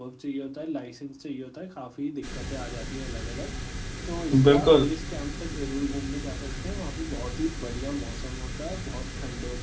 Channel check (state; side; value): identical; both; correlation 1.00